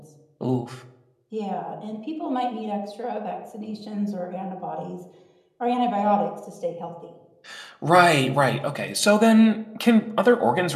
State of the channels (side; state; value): both; identical; correlation 1.00